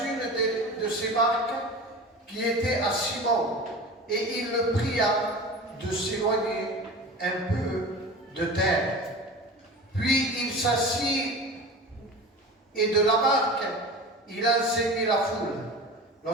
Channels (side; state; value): both; normal; correlation 0.34